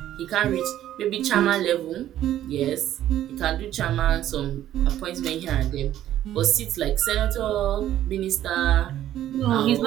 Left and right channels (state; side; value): quieter; left; 12.2 dB